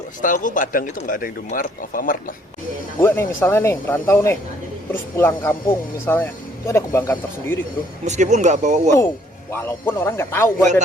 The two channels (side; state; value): both; normal; correlation 0.63